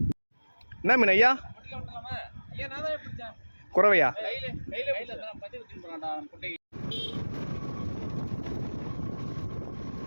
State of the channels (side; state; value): both; inverted; correlation -1.00